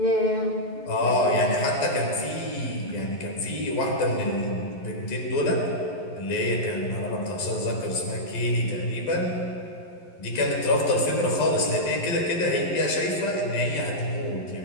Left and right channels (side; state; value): right; late; 11 ms